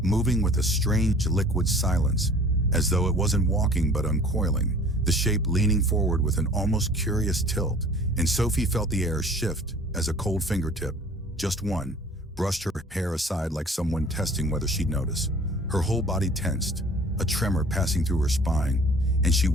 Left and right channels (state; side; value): normal; both; correlation 0.48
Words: moving with a strange liquid silence, as though it wasn't walking but uncoiling, the shape leaning forward with an almost curious tilt. And Sophie felt the air shift as a cold fingertip, just one, brushed her hair aside like someone testing whether she'd notice. Her whole body tensed, a tremor passing through her spine, and she